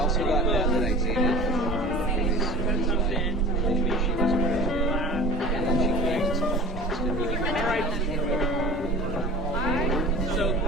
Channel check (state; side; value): normal; both; correlation 0.40